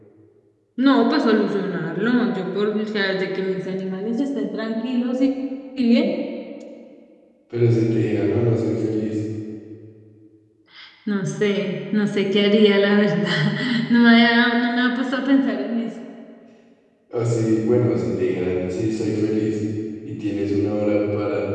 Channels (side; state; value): both; identical; correlation 1.00